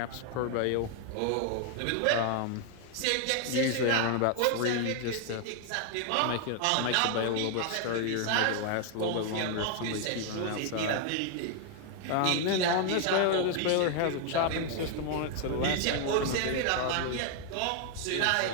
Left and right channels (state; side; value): different; both; correlation 0.00